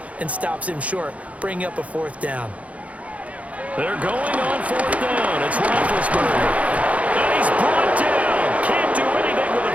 and stops him short, bringing up a 4th down. They're going on 4th down. It's Roethlisberger. And he's brought down. Can't do anything with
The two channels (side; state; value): left; late; 0.066 ms